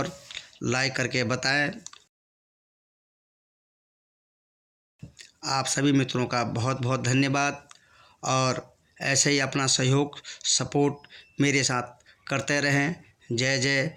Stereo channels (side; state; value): both; identical; correlation 1.00